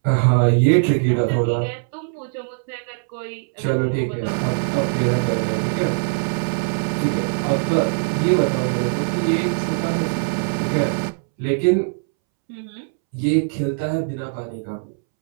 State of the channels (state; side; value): silent; left; 65 dB below the other